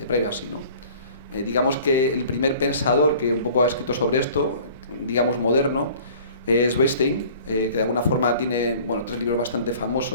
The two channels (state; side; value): inverted; both; correlation -0.48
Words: privacy, ¿no? Digamos que el primer pensador que un poco ha escrito sobre esto, digamos moderno, es Weinstein, que de alguna forma tiene 3 libros bastante